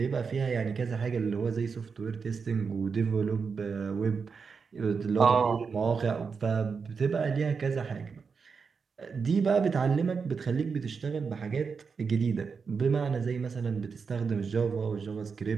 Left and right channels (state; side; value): quieter; left; 5.5 dB